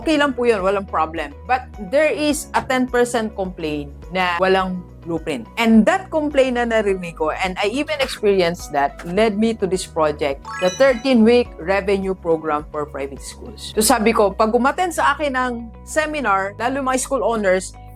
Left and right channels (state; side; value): identical; both; correlation 1.00